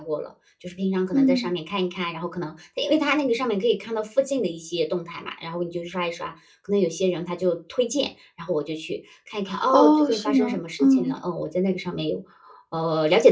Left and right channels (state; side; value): identical; both; correlation 1.00